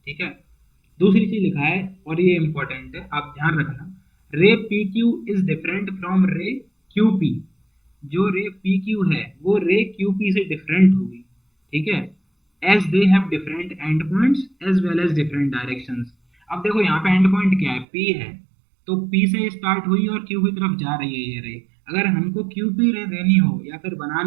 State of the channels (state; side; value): drops out; left; at 17.9 s